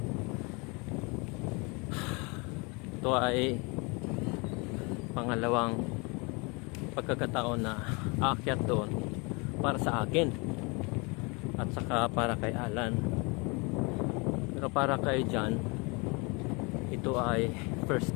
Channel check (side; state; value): right; quieter; 29.5 dB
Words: Ito ay pangalawang pagkakataon na aakyat doon para sa akin at saka para kay Alan. Pero para kay John, ito ay first